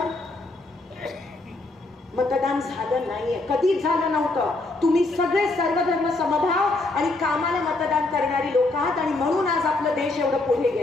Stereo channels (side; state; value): right; quieter; 3.1 dB